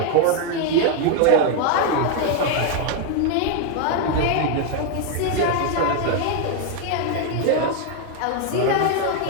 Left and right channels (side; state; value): both; different; correlation 0.00